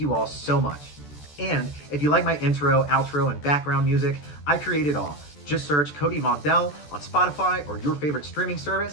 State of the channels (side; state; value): right; late; 14 ms